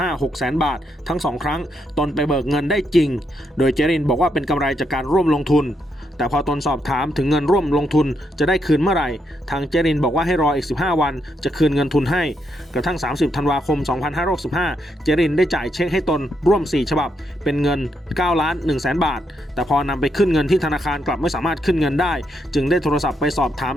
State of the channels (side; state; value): both; normal; correlation 0.78